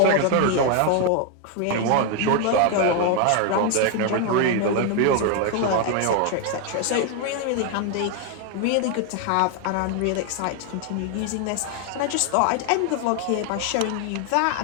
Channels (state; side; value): different; both; correlation 0.01